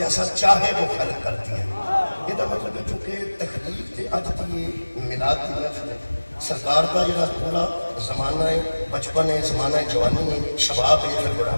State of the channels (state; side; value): inverted; both; correlation -1.00